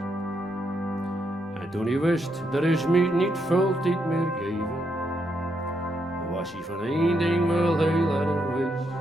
En toen hij wist, er is me niet veel tijd meer geven, was hij van één ding wel heel erg wist.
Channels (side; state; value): both; normal; correlation 0.79